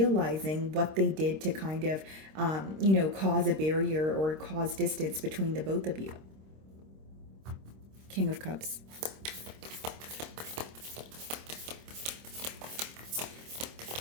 what they did to kind of, cause a barrier or cause distance between the both of you. King of Cups.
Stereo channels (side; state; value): left; late; 26 ms